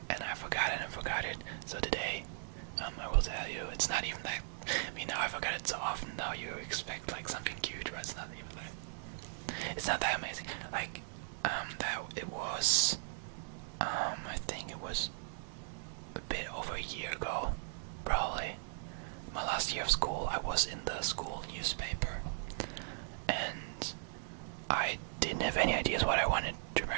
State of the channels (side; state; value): left; silent; digital silence